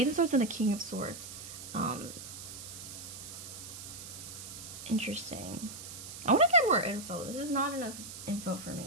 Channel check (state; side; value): noise; right; hiss, 11 dB below the sound